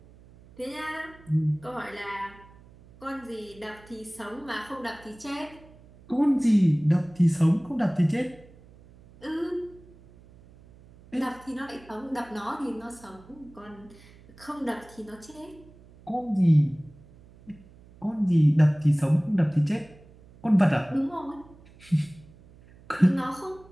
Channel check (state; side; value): noise; right; hum, 24 dB below the sound